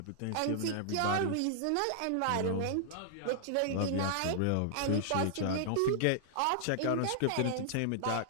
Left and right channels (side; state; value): both; different; correlation -0.01